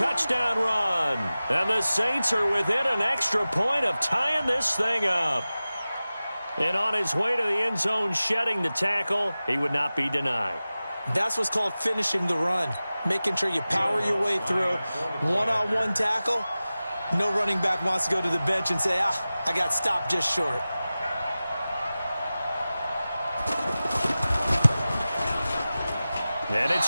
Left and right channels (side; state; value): both; inverted; correlation -0.96